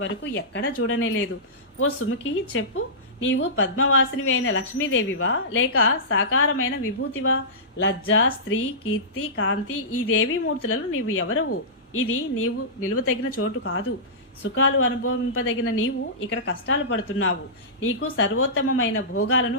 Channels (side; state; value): both; normal; correlation -0.18